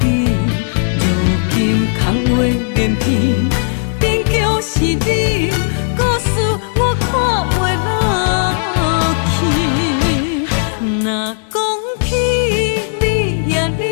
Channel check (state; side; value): silent; right; digital silence